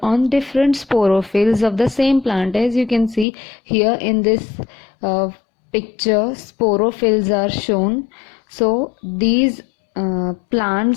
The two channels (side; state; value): right; drops out; at 3.2 s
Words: on different sporophylls of the same plant. As you can see here in this picture, sporophylls are shown. So these